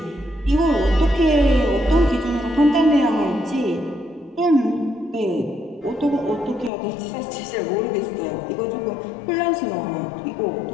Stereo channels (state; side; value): drops out; right; at 6.7 s